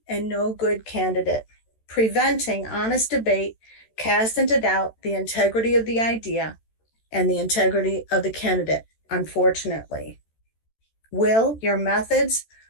and no good candidate. Preventing honest debate casts into doubt the integrity of the idea and the integrity of the candidate, unfortunately. Will your methods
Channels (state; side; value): late; right; 13 ms